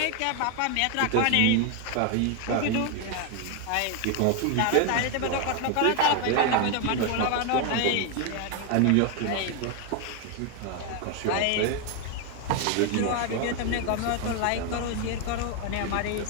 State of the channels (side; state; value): both; different; correlation 0.01